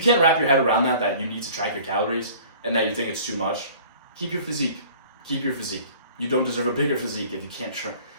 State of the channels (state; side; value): inverted; both; correlation -0.48